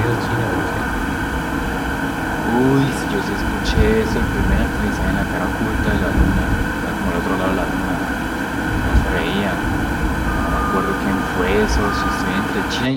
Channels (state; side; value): identical; both; correlation 1.00